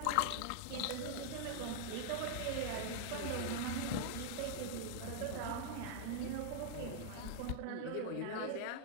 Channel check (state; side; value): different; both; correlation 0.00